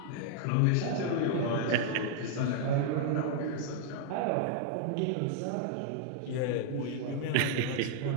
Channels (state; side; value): different; both; correlation -0.01